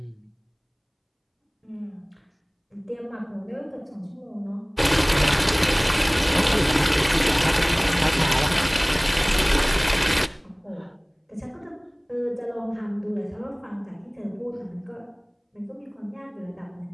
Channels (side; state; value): both; identical; correlation 1.00